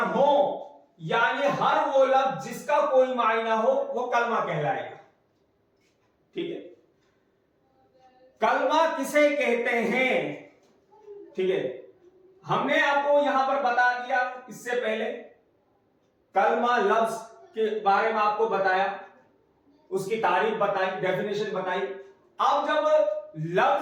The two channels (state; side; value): identical; both; correlation 1.00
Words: हो, यानी हर वो लफ्ज जिसका कोई मायना हो वो कलमा कहलाएगा। ठीक है, कलमा किसे कहते हैं? ठीक है, हमने आपको यहां पर बता दिया इससे पहले, कलमा लफ्ज के बारे में आपको बताया, उसकी तारीफ बताई, डेफिनेशन बताई। अब जब